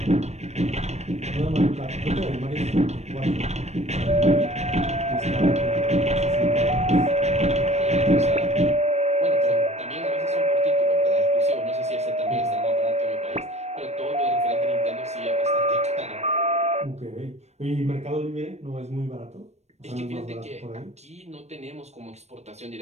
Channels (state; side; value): late; left; 0.32 ms